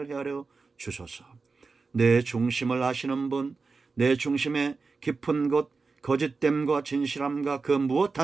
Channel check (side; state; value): left; quieter; 4.3 dB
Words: 헤아려 주소서. 내 중심을 아시는 분, 내 중심의 깊은 곳, 거짓됨과 진실함과 그 무엇